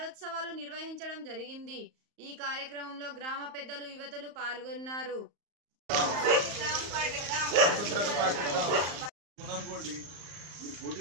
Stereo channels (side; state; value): left; late; 34 ms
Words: నిర్వహించడం జరిగింది. ఈ కార్యక్రమంలో గ్రామ పెద్దలు, యువతులు పాల్గొన్నారు.